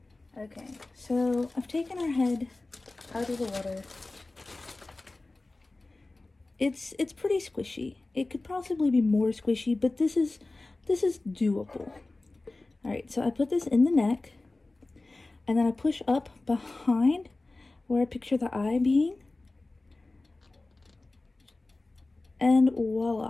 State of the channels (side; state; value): right; quieter; 3.1 dB